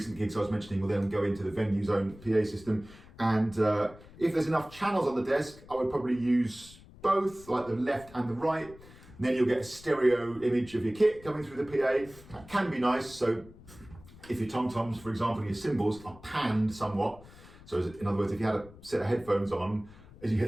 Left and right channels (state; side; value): noise; left; rumble, 21 dB below the sound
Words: gigs I was mentioning, will then go into the venue's own PA system. And if there's enough channels on the desk, I would probably use both, like the left and the right. And then you'll get a stereo image of your kit coming through the PA. That can be nice. So if your tom-toms, for example, your cymbals are panned somewhat. So in other words, if you had a set of headphones on, as you